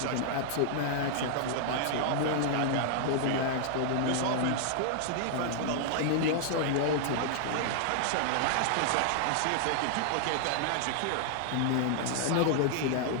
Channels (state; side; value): different; both; correlation -0.01